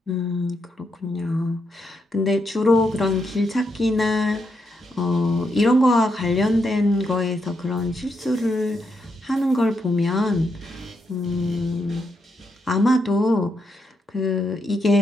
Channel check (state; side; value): normal; both; correlation 0.81